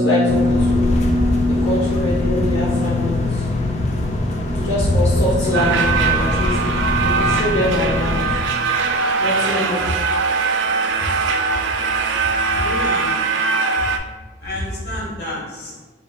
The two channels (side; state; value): both; normal; correlation 0.38